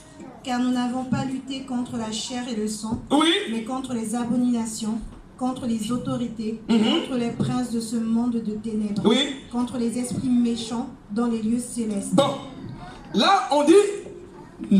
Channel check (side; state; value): both; identical; correlation 1.00